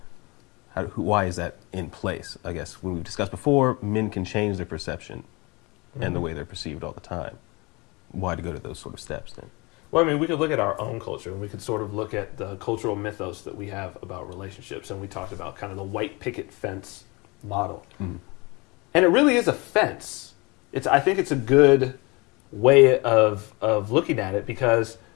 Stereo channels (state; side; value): quieter; right; 26.2 dB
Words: Why is that in place? I guess when we've discussed before, men can change their perception and the way they're perceived all the time. Why to go to those sort of steps then? Well, I mean, we could look at our own culture, and we could sort of look at the cultural mythos that we have about relationships, and we talked about kind of the white picket fence model. And it really is a fence. I think it's a good way of looking at it because,